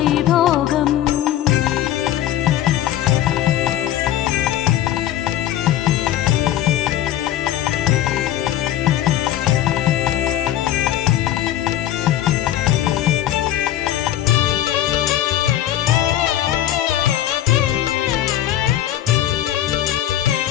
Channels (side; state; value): right; quieter; 12.3 dB